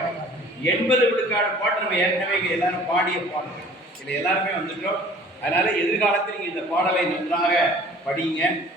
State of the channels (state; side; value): normal; both; correlation 0.50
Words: 80 விழுக்காடு பாட்டு நம்ம ஏற்கனவே எல்லாரும் பாடிய பாடல். இதில் எல்லாருமே வந்துட்டோம். அதனால எதிர்காலத்தில் நீங்கள் இந்த பாடலை நன்றாக படிங்க.